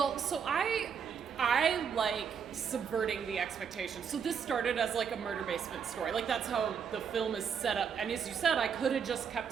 so I like subverting the expectations. So this started as like a murder basement story. Like that's how the film is set up. And as you said, I could have just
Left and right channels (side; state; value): left; quieter; 7.0 dB